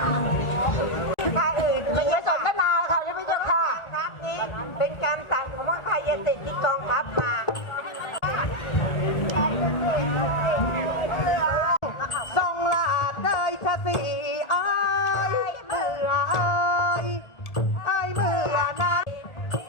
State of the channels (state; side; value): late; right; 1.5 ms